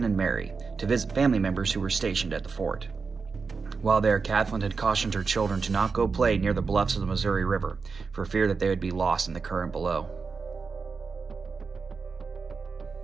and Mary, to visit family members who were stationed at the fort. While there, Kathleen had cautioned her children to not go play near the bluffs of the Missouri River for fear that they would be lost in the current below.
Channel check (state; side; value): quieter; left; 4.9 dB